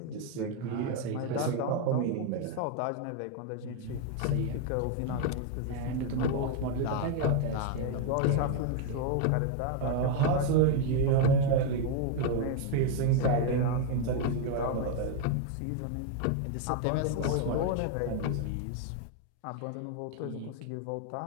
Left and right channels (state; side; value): different; both; correlation 0.01